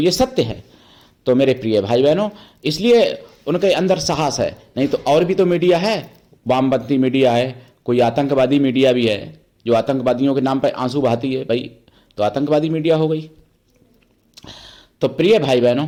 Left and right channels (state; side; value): identical; both; correlation 1.00